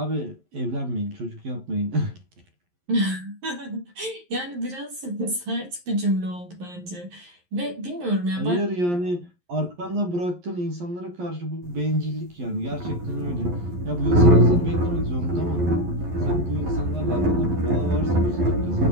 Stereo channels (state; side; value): late; left; 11 ms